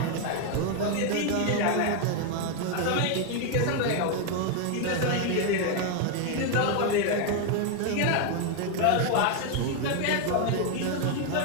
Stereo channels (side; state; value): both; different; correlation 0.01